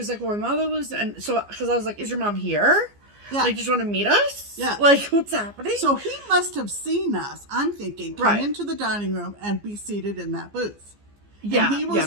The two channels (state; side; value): late; left; 15 ms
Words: like, "Well, my mother lives," and so, because I was like, "Is your mom here? Yeah. Like, just want to meet us? Yeah. Like, what's happening?" So he must have seen us, I'm thinking, come into the dining room and be seated in that booth. Yeah. And he